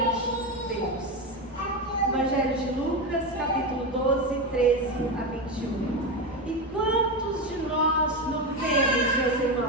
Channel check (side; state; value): both; normal; correlation 0.15